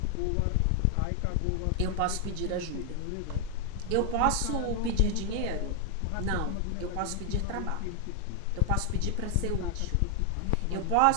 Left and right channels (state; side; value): different; both; correlation 0.00